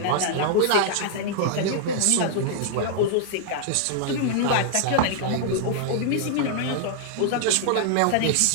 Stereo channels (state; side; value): different; both; correlation -0.01